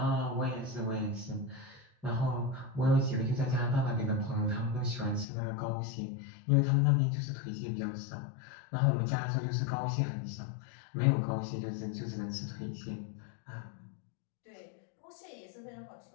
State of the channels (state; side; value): drops out; right; at 5.2 s